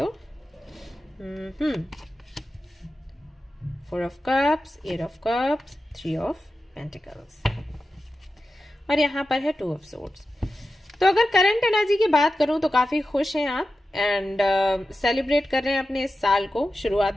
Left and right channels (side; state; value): both; normal; correlation 0.92